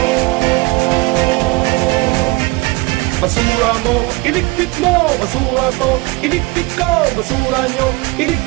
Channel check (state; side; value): quieter; left; 23.3 dB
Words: Basura mo, iligpit mo, basura ko, iligpit ko, basura nyo,